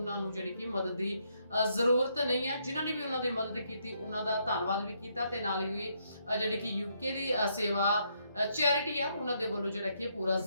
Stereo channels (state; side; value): inverted; both; correlation -0.74